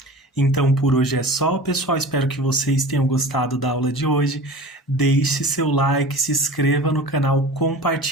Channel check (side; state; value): both; normal; correlation 0.37